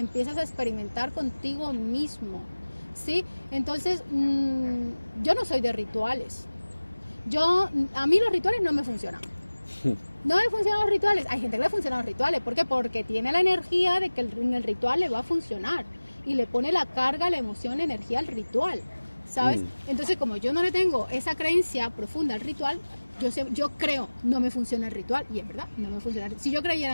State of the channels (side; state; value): both; inverted; correlation -1.00